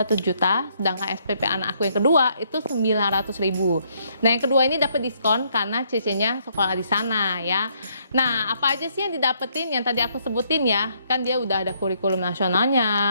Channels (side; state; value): both; inverted; correlation -0.70